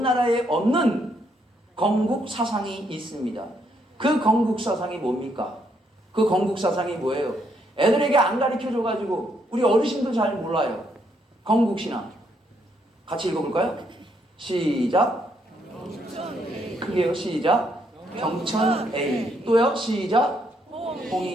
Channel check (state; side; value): normal; both; correlation 0.73